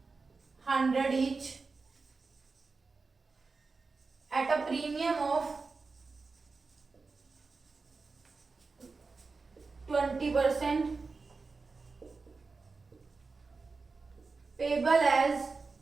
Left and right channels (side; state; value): left; quieter; 4.2 dB